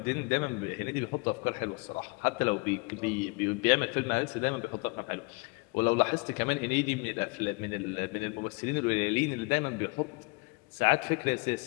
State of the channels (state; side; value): quieter; right; 29.0 dB